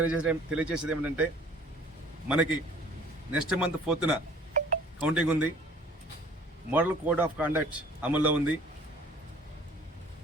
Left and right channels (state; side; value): normal; both; correlation 0.52